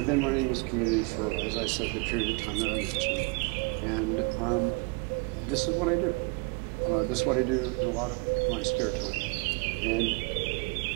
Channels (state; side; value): quieter; left; 31.6 dB